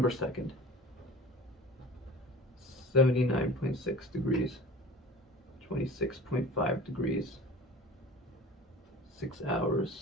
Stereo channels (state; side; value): normal; both; correlation 0.40